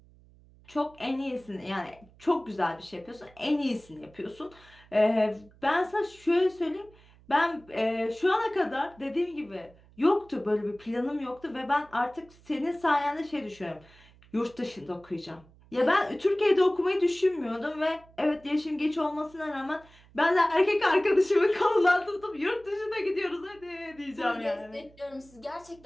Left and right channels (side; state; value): right; noise; hum, 26 dB below the sound